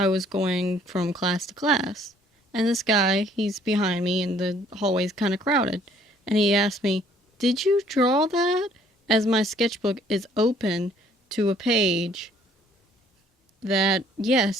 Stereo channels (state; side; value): normal; both; correlation 0.60